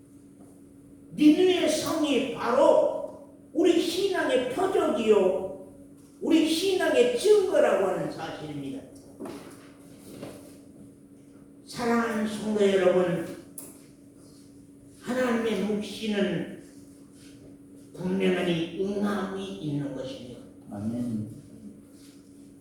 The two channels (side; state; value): both; identical; correlation 1.00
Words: 니느웨 성이 바로 우리 신앙의 표적이요, 우리 신앙의 증거라고 하는 사실입니다. 사랑하는 성도 여러분, 하나님의 묵시는 분명히 응함이 있는 것입니다. 아멘.